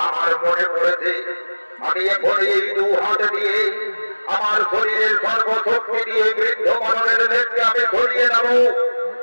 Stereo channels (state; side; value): inverted; both; correlation -1.00